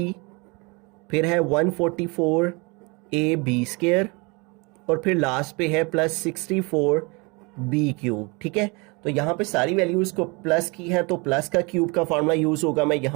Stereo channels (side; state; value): left; quieter; 28.7 dB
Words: फिर है 144ab स्क्वायर, और फिर लास्ट पे है प्लस 64b क्यूब। ठीक है, तो यहाँ पे सारी वैल्यूज़ को प्लस की है तो प्लस का क्यूब का फार्मूला यूज़ होगा। मैं